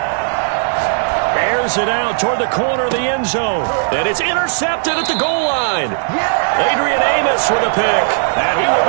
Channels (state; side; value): silent; left; digital silence